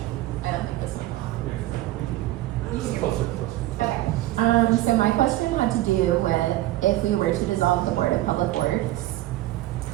don't think this one's on. Okay. So my question had to do with if we were to dissolve the Board of Public Works,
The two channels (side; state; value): left; quieter; 16.1 dB